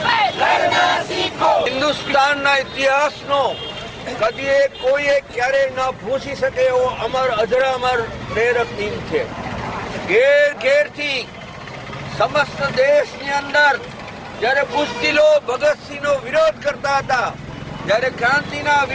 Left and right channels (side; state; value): both; identical; correlation 1.00